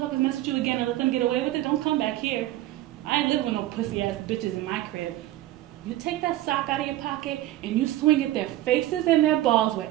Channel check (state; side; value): quieter; left; 15.1 dB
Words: mess with you again and let them get away with it, don't come back here. I ain't living with no pussy-ass bitches in my crib. You take that sock out of your pocket and you swing at their faces and their balls with